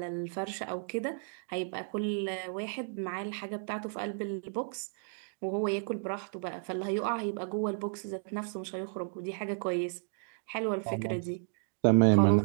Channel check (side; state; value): left; silent; 56 dB below the other